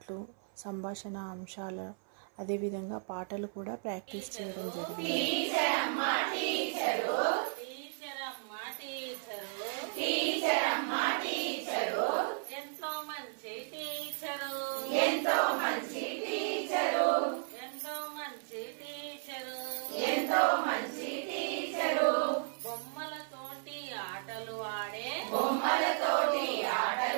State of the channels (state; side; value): silent; left; 55 dB below the other